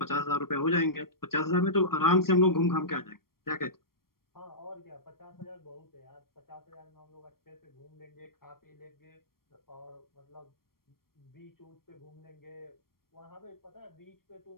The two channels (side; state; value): right; late; 0.93 ms